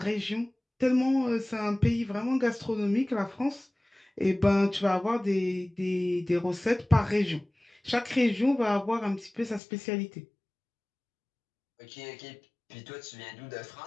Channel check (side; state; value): right; drops out; at 9.6 s